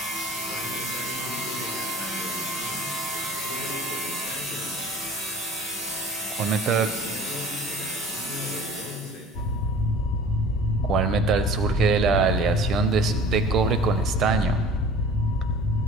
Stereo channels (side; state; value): both; normal; correlation 0.45